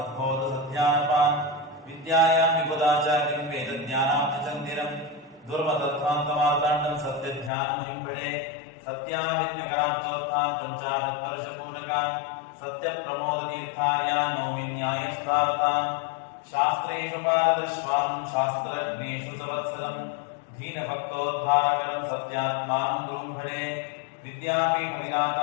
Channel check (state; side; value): drops out; right; at 7.5 s